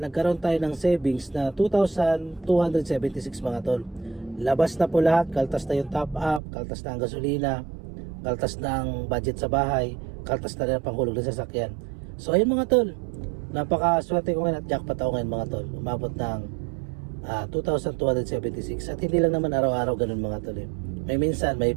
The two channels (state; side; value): drops out; left; at 6.4 s